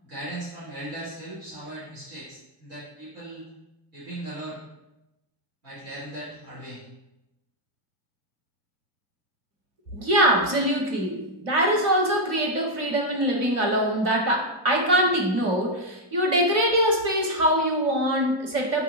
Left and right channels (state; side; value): late; left; 2.9 ms